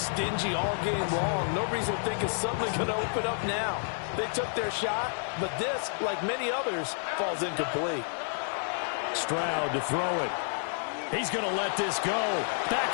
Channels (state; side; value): silent; right; digital silence